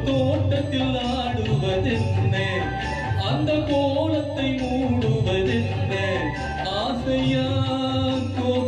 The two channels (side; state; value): both; identical; correlation 1.00